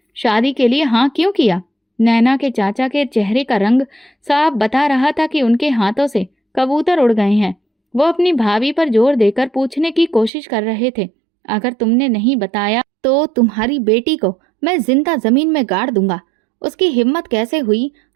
शादी के लिए हाँ क्यों किया? नैना के चाचा के चेहरे का रंग साफ बता रहा था कि उनके हाथों से कबूतर उड़ गए हैं। वो अपनी भाभी पर जोर देकर पूछने की कोशिश कर रहे थे, अगर तुमने नहीं बताया तो तुम्हारी बेटी को मैं जिंदा जमीन में गाड़ दूंगा। उसकी हिम्मत कैसे हुई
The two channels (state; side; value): drops out; left; at 10.3 s